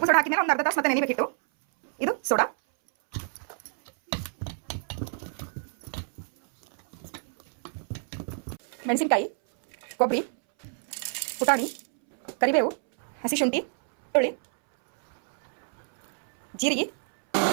ಸೋಡಾ ಹಾಕಿದ್ರೆ ಒಂದು ಅರ್ಧ ತಾಸು ಮತ್ತೆ ನೆನೆಬೇಕಿತ್ತು. ಇದು ಸೋಡಾ, ಮೆಣಸಿನಕಾಯಿ, ಕೊಬ್ಬರಿ, ಪುಟಾಣಿ, ಕರಿಬೇವು, ಹಸಿ ಶುಂಠಿ, ಬೆಳ್ಳುಳ್ಳಿ, ಜೀರಿಗೆ.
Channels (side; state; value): left; silent; 60 dB below the other